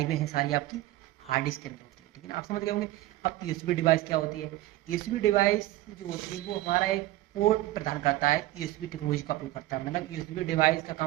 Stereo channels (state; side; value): quieter; left; 16.6 dB